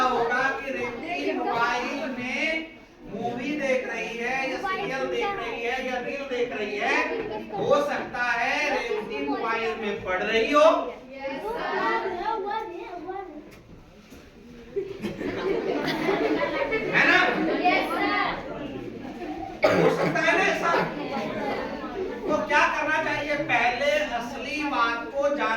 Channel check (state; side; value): identical; both; correlation 1.00